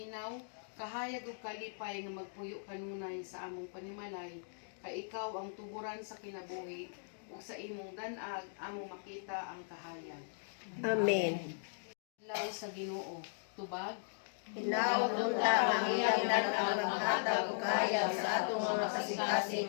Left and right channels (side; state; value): right; silent; digital silence